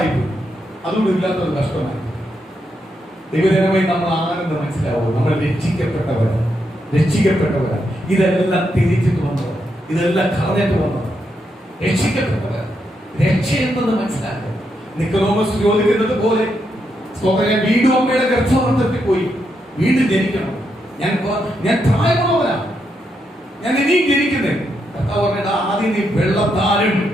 പോയി. അതുകൊണ്ട് ഇല്ലാത്തൊരു കഷ്ടമായി. ദൈവജനമായി നമ്മൾ ആരെന്ന് മനസ്സിലാവും. നമ്മൾ രക്ഷിക്കപ്പെട്ടവരാണ്. ഇതെല്ലാം തിരിച്ചിട്ട് വന്നത്, ഇതെല്ലാം കളഞ്ഞിട്ട് വന്നത് രക്ഷിക്കപ്പെട്ടവർ. രക്ഷയെന്നത് മനസ്സിലാക്കുക. നിക്കോദോമസ് ചോദിക്കുന്നത് പോലെ ഞാൻ വീണ്ടും അമ്മയുടെ ഗർഭപാത്രത്തിൽ പോയി വീണ്ടും ജനിക്കണം. ഞാൻ പ്രായമുള്ളവനാണ്, ഞാൻ ഇനിയും ജനിക്കുന്നേ. കർത്താവ് പറഞ്ഞിട്ട് ആദ്യം നീ വെള്ളത്താലും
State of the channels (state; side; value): normal; both; correlation 0.81